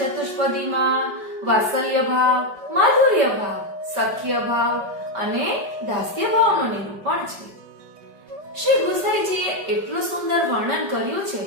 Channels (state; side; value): late; left; 5.2 ms